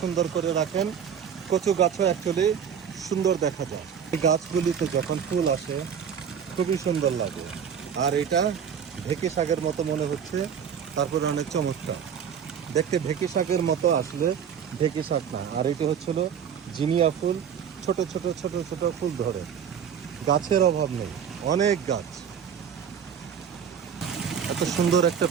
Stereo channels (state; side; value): quieter; left; 7.9 dB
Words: সুন্দর করে রাখেন, কচু গাছও অ্যাকচুয়ালি সুন্দর দেখা যায়। এই গাছগুলিতে যখন ফুল আসে খুবই সুন্দর লাগে। আর এটা ঢেঁকি শাকের মতো মনে হচ্ছে, তারপরে অনেক চমৎকার দেখতে। ঢেঁকি শাকের মতো আসলে ঢেঁকি শাক না, আর এটা হচ্ছিল জিনিয়া ফুল। ছোট ছোট ছোট ছোট ফুল ধরে, গাছের অভাব নেই, অনেক গাছ। এত সুন্দর একটা